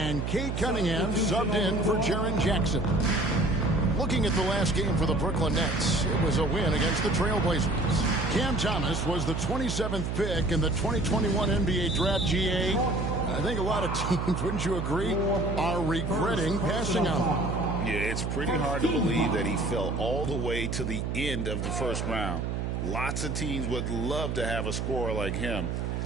Cade Cunningham subbed in for Jaren Jackson. Looking at the last game for the Brooklyn Nets, it was a win against the Trailblazers. Cam Thomas was the 27th pick in the 2021 NBA Draft. GA. I think a lot of teams, wouldn't you agree, are regretting passing on him. Yeah, it's pretty hard to believe that he fell all the way to the end of the first round. Lots of teams would love to have a scorer like him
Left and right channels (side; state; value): right; noise; hum, 2 dB below the sound